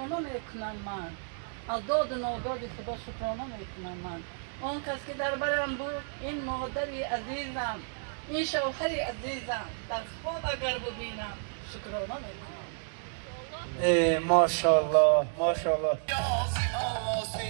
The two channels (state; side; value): silent; left; digital silence